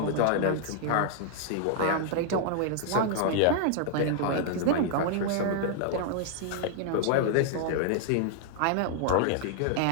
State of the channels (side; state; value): both; different; correlation -0.01